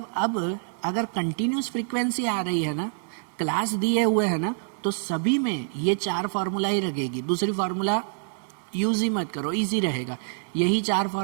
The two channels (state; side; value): silent; left; digital silence